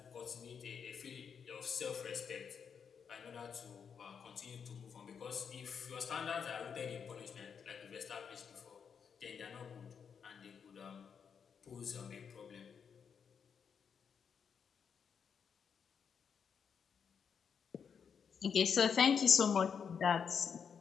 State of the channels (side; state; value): right; quieter; 6.8 dB